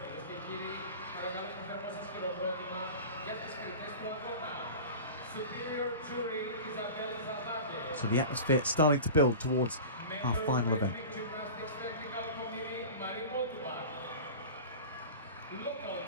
So the atmosphere starting to build towards our final event.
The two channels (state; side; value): inverted; both; correlation -0.34